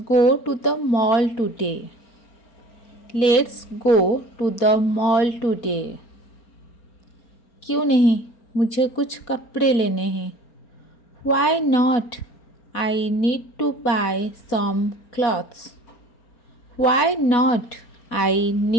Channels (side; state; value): right; late; 4.4 ms